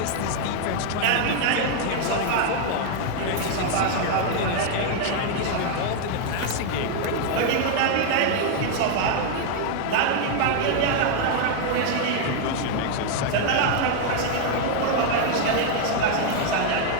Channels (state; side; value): different; both; correlation 0.00